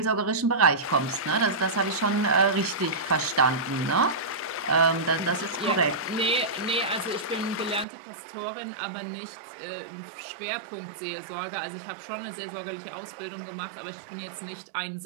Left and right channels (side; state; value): left; drops out; at 7.9 s